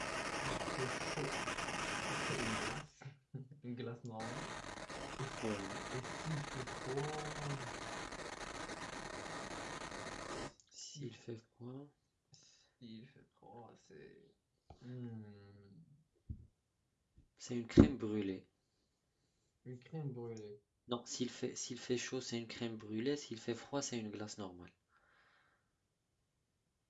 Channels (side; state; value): both; identical; correlation 1.00